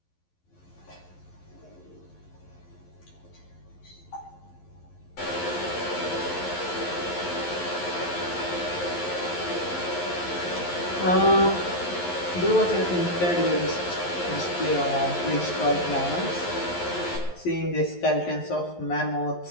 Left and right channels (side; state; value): right; late; 11 ms